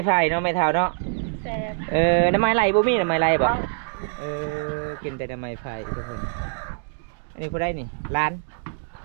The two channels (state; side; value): silent; left; digital silence